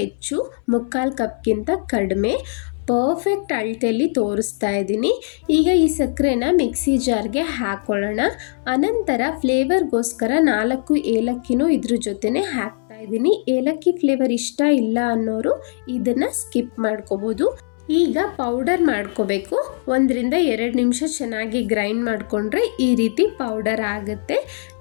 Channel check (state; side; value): silent; right; 62 dB below the other